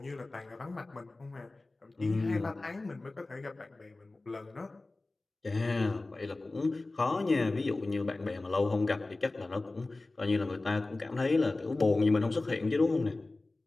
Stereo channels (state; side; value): quieter; right; 3.1 dB